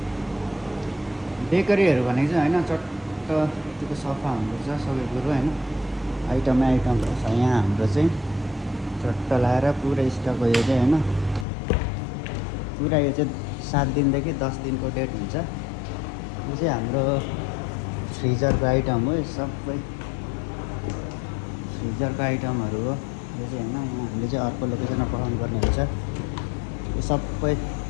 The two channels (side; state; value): right; drops out; at 11.5 s